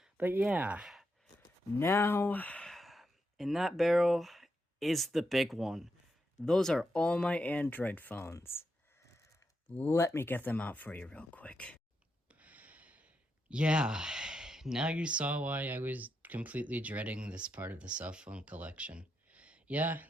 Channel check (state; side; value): normal; both; correlation 0.84